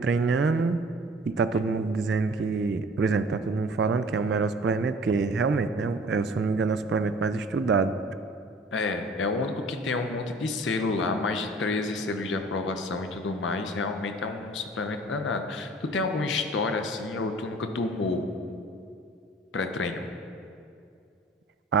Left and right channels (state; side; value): normal; both; correlation 0.48